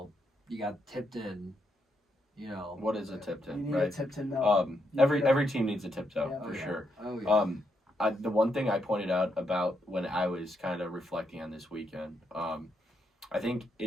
Tipton, What is a Tipton? You need a Tipton, though. Every team needs a tiptoe for sure. Oh, yeah. The one thing I pointed out about when I was kind of reflecting on this weekend, I think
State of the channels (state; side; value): normal; both; correlation 0.79